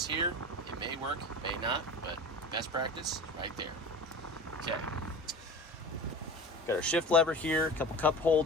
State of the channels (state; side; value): normal; both; correlation 0.34